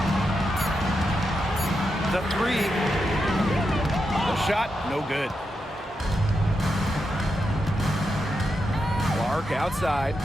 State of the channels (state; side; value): normal; both; correlation 0.86